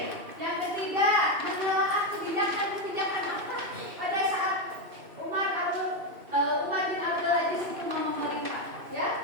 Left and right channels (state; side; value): late; left; 2.7 ms